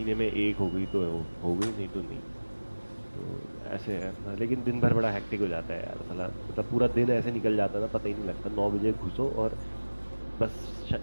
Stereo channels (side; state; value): both; inverted; correlation -1.00